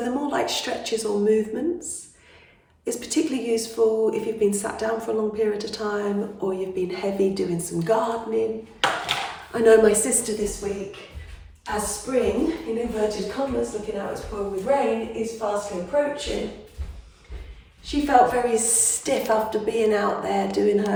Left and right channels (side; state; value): both; identical; correlation 1.00